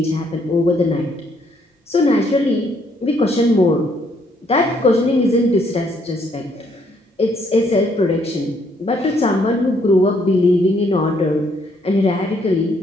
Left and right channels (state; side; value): normal; both; correlation 0.69